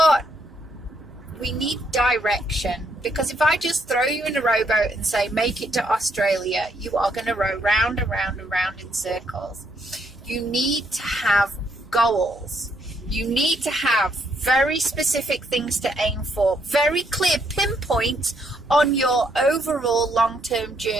we need direction. Because if I just throw you in a rowboat and say, make it to Australia, you are going to row round and round and round in circles. You need to have goals. You need to have very specific things to aim for, very clear pinpoints on your overall long-term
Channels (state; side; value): normal; both; correlation 0.73